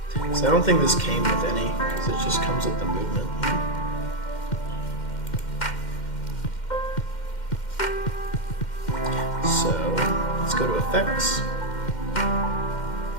So I don't think this came with any, because it just comes with the movement. So let's go to effects.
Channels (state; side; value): late; right; 2.1 ms